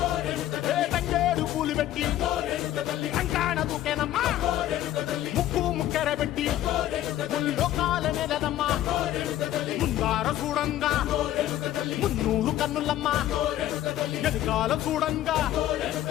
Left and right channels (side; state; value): right; quieter; 13.1 dB